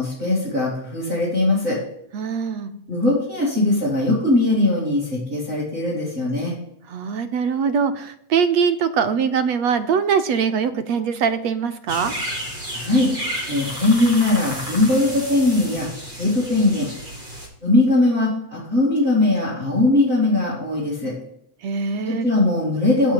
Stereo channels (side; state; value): left; late; 8.0 ms